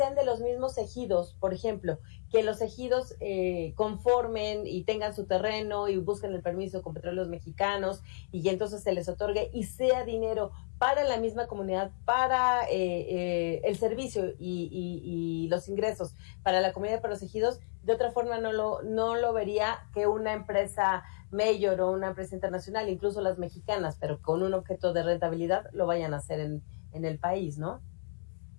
de los mismos ejidos, por ejemplo, que los ejidos conformen y tengan su terreno y busquen el permiso con Petróleos Mexicanos y que entonces se les otorgue y sea dinero para la misma comunidad, para el servicio y los ingresos para la comunidad, para los ejidos. De otra forma no lo vería que una empresa mayor o una empresa internacional, incluso las mexicanas, pero con un objeto de rentabilidad, lo vayan a hacer en el país, ¿no?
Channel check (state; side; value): silent; right; digital silence